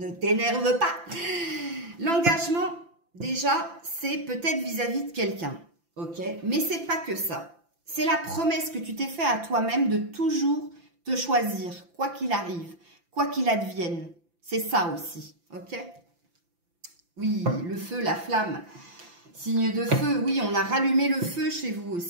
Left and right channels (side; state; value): left; late; 5.9 ms